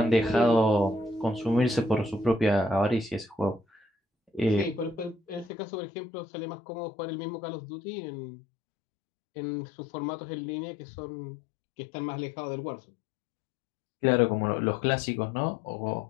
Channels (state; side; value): drops out; right; at 5.5 s